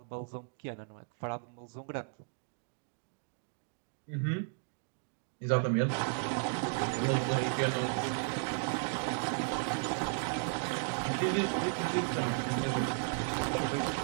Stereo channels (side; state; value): left; silent; 55 dB below the other